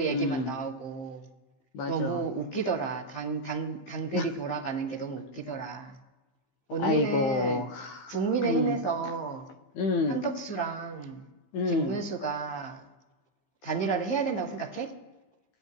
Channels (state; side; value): late; right; 15 ms